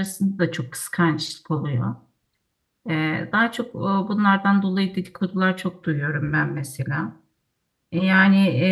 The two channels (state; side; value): identical; both; correlation 1.00